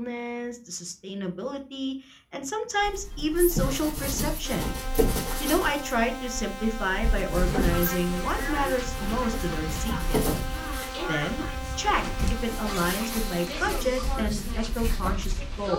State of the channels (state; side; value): identical; both; correlation 1.00